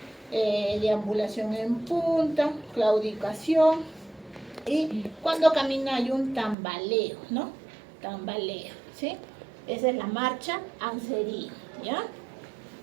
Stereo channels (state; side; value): drops out; left; at 6.6 s